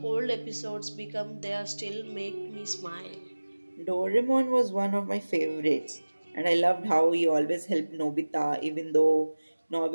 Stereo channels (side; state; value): both; inverted; correlation -1.00